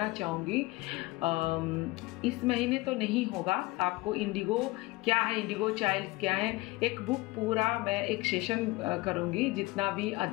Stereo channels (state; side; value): quieter; right; 21.5 dB